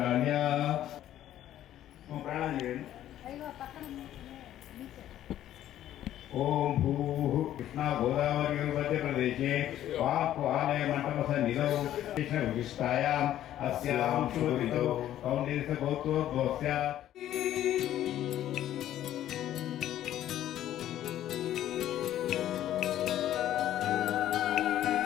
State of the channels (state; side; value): quieter; right; 12.3 dB